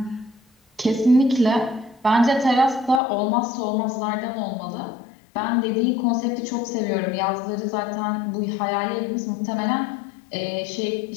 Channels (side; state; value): right; drops out; at 3.0 s